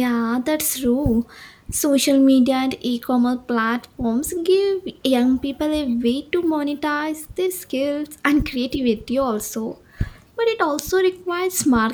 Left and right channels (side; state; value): both; identical; correlation 1.00